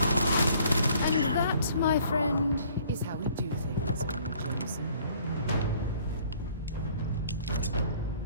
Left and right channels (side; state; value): both; inverted; correlation -0.58